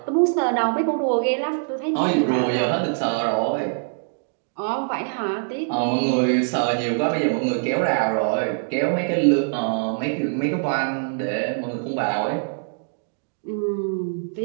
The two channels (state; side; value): silent; left; digital silence